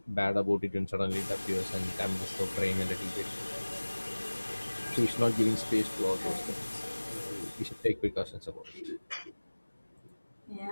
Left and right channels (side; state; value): both; inverted; correlation -1.00